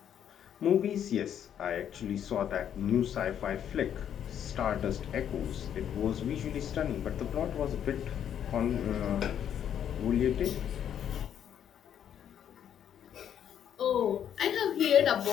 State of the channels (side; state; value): right; quieter; 9.4 dB